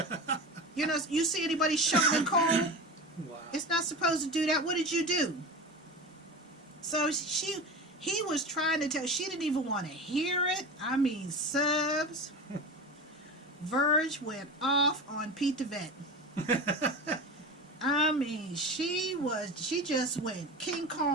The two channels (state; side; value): normal; both; correlation 0.28